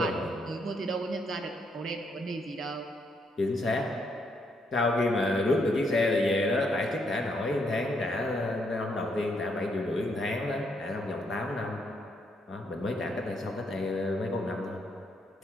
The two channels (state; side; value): normal; both; correlation 0.75